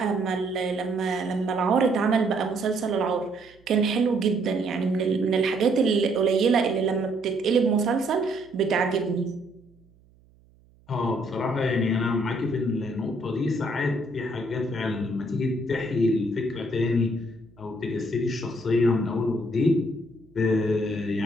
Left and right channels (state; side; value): noise; right; hum, 30 dB below the sound